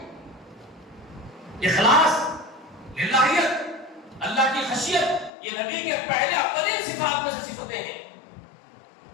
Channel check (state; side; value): drops out; right; at 5.3 s